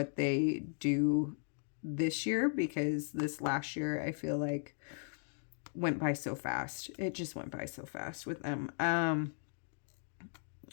they do this year, because this last year I feel like went by so fast. It just went by so fast with them. And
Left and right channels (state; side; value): silent; right; digital silence